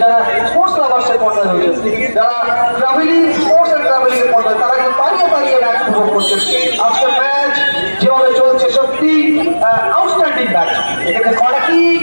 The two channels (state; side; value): inverted; both; correlation -1.00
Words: যারা স্পোর্টস লাভার্সের পর্দায় রয়েছেন, যারা ট্রাভেলিং স্পোর্টস এন্ড ট্রাভেলিং এর পর্দায়, তারা কিন্তু পারিয়ে ম্যাচ উপভোগ করছেন। আজকের ম্যাচ যেভাবে চলছে সত্যি আউটস্ট্যান্ডিং ম্যাচ। এখানে কর্নার কিক